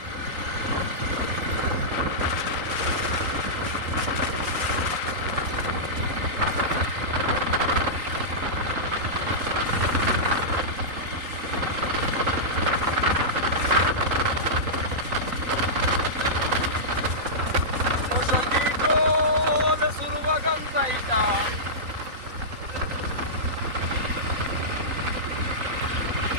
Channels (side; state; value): left; late; 3.8 ms